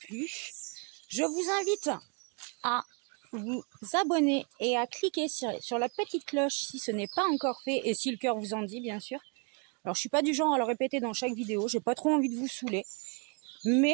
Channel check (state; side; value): quieter; left; 35.5 dB